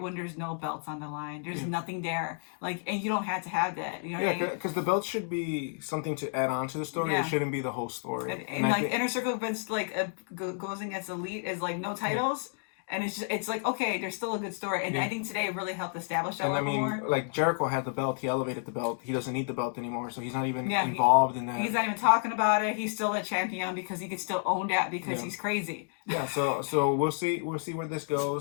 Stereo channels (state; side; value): silent; right; 57 dB below the other